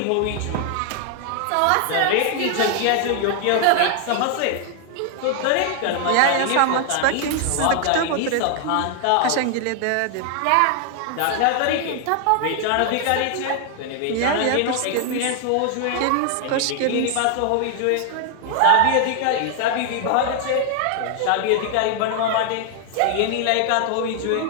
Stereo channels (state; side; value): different; both; correlation 0.00